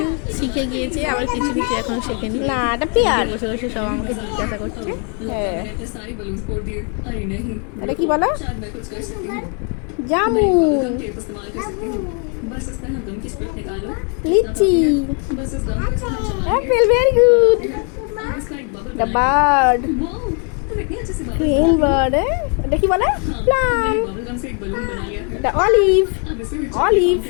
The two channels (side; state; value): right; quieter; 38.7 dB